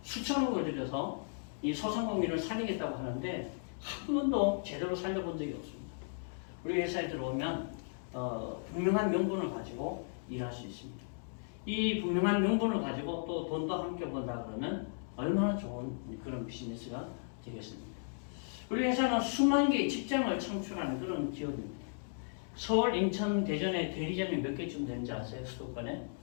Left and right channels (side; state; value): right; silent; digital silence